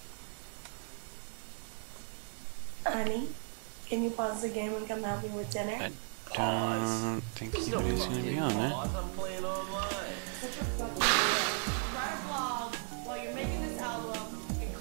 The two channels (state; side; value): silent; left; 54 dB below the other